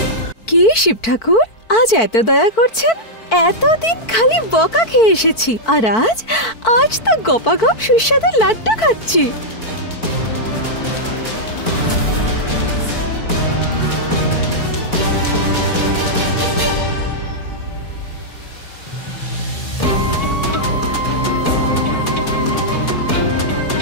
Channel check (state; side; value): late; right; 4.5 ms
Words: কি শিব ঠাকুর, আজ এত দয়া করছেন? এতদিন খালি বকা খেয়ে এসেছি, আর আজ তো গপাগপ সুস্বাদু লাড্ডু খাচ্ছি।